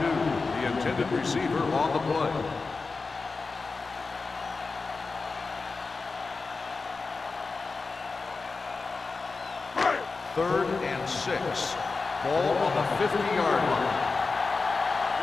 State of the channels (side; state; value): right; quieter; 4.1 dB